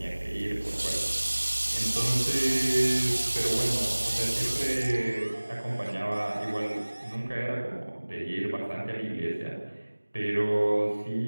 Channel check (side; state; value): both; inverted; correlation -1.00